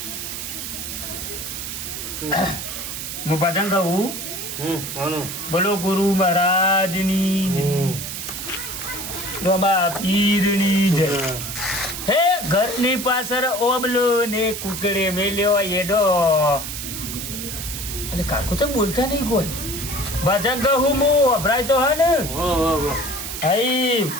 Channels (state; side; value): noise; right; hiss, 6 dB below the sound